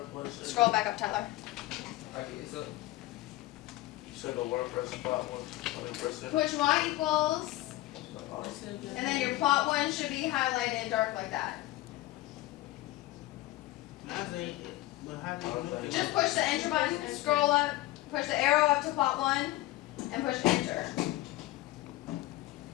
it? Scroll back up, Tyler. Okay, so You said go where? Press plot 1. I mean, press it. Push Y equals, Oh, and then your plot 1 should be highlighted dark like that. I think, but how do you do it? Just push the enter button, scroll up, push the arrow up to plot 1, and push enter.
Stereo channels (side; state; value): right; quieter; 17.4 dB